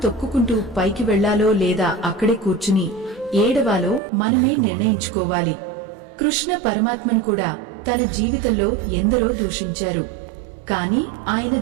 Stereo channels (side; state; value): left; drops out; at 4.0 s